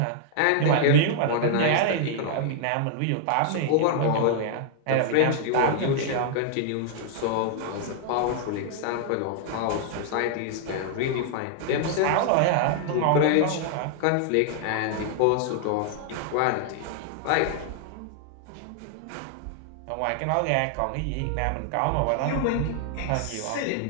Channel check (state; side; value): different; both; correlation 0.00